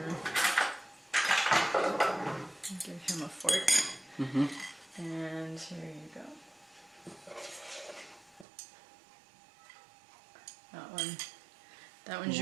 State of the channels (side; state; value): left; drops out; at 8.5 s